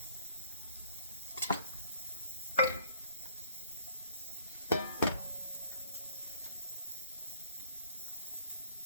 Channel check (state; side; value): inverted; both; correlation -0.59